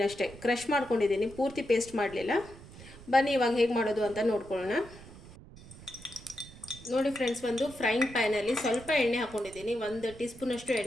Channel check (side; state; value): right; noise; rumble, 18 dB below the sound